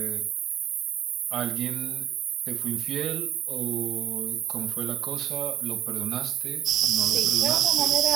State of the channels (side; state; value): left; quieter; 11.4 dB